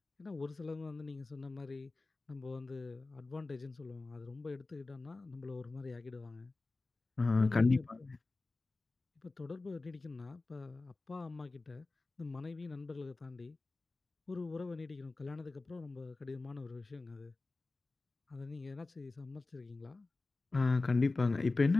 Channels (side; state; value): right; quieter; 3.4 dB